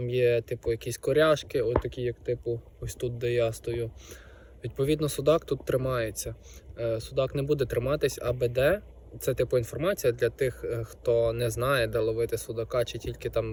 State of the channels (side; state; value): both; identical; correlation 1.00